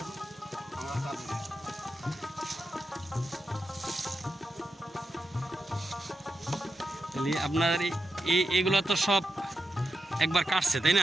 আমার কাজ। তাহলে আপনার এগুলো তো সব একবার কাটছে তাই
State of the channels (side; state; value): both; normal; correlation 0.88